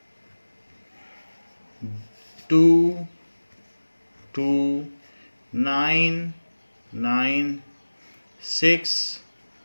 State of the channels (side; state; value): both; inverted; correlation -1.00